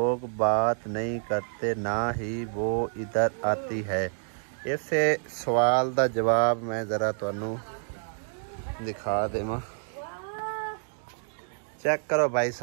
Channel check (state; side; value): silent; left; digital silence